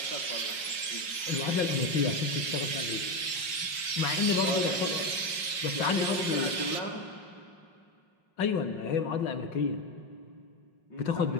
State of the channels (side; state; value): right; late; 5.0 ms